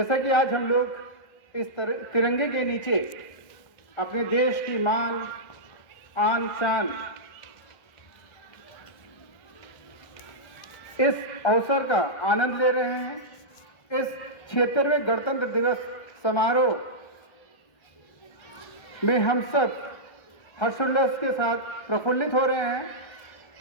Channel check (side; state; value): right; late; 1.6 ms